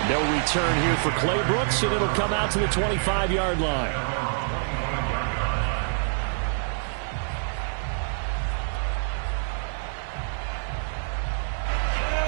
No return here for Clay Brooks, and it'll come out to the 25-yard line.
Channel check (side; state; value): left; silent; digital silence